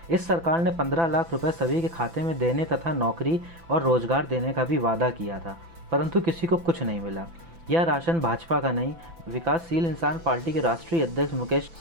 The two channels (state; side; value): late; left; 6.0 ms